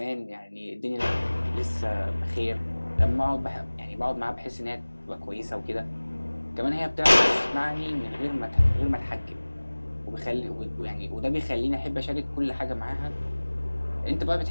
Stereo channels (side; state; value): both; inverted; correlation -1.00